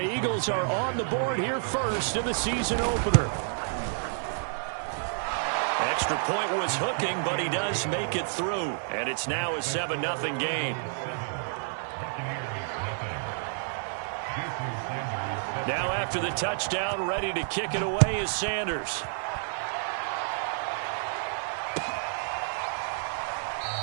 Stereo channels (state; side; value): silent; left; 58 dB below the other